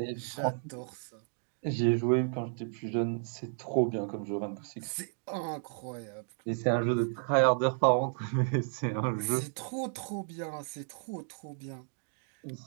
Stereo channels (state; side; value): silent; left; 56 dB below the other